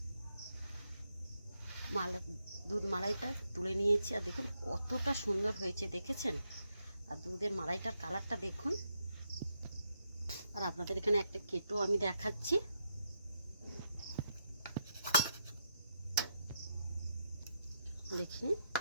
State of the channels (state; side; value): inverted; both; correlation -0.81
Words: দুধ মালাইটা তুলে নিয়েছি। আর দেখুন কতটা সুন্দর হয়েছে, দেখেছেন? আর দুধের মালাইটার কালারটা দেখুন। আর আপনাদের এখানে একটা কেটো আমি দেখাচ্ছি। দেখুন